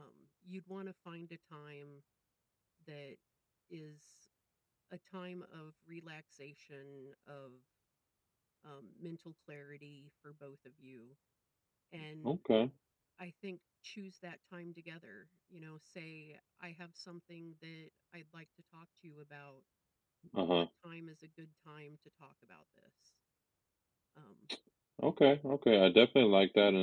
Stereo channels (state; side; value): identical; both; correlation 1.00